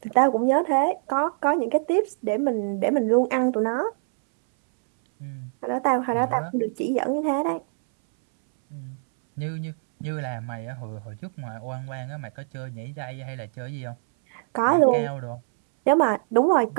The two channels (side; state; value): left; silent; 62 dB below the other